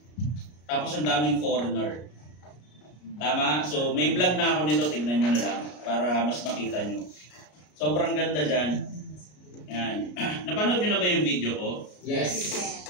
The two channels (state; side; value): late; right; 33 ms